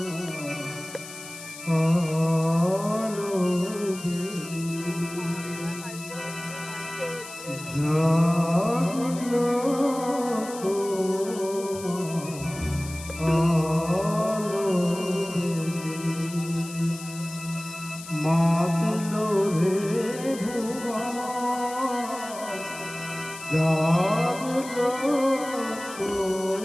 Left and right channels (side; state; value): left; noise; hiss, 14 dB below the sound